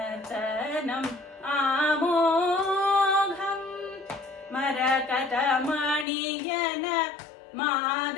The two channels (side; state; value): right; drops out; at 6.1 s